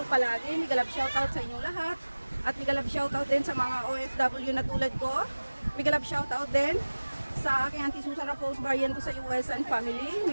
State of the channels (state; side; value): inverted; both; correlation -1.00